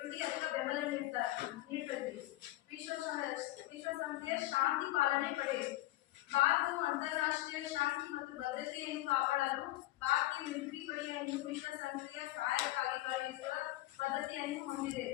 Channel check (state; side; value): quieter; right; 17.3 dB